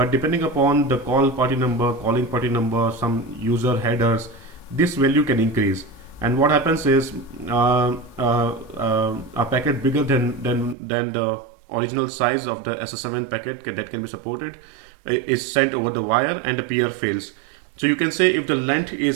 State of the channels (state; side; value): drops out; left; at 10.8 s